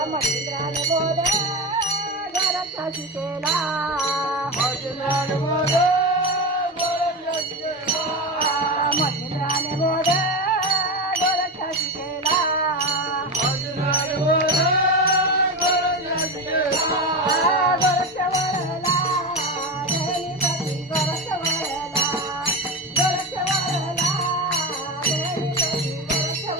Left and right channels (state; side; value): normal; both; correlation 0.19